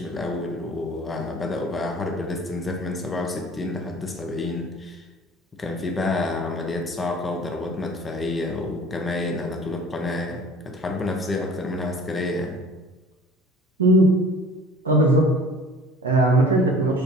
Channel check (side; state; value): both; normal; correlation 0.46